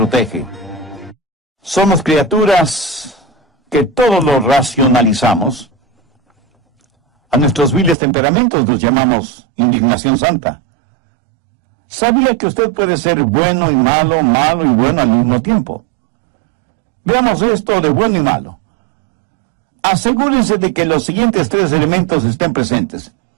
Somos criaturas que todo lo racionalizamos. A nuestros viles temperamentos los llamamos indignación santa. ¿Sabía que usted puede ser bueno y malo, malo y bueno al mismo tiempo? Veamos esto de bueno y malo. Asegúrense de que los siguientes tres elementos estén presentes.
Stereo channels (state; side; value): drops out; left; at 8.0 s